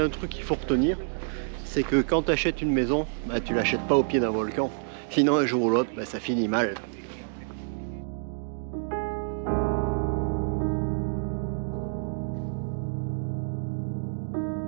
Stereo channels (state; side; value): silent; left; digital silence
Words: un truc qu'il faut retenir, c'est que quand tu achètes une maison, bah, tu l'achètes pas au pied d'un volcan. Sinon un jour ou l'autre, bah, ça finit mal.